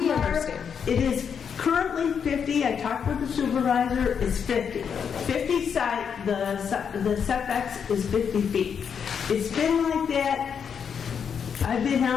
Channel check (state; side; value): quieter; right; 7.1 dB